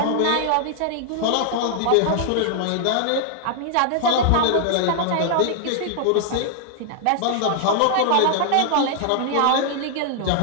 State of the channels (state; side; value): different; both; correlation 0.00